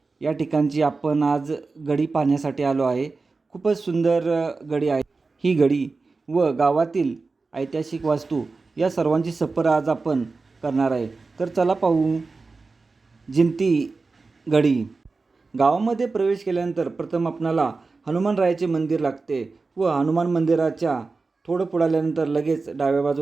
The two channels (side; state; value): left; quieter; 4.0 dB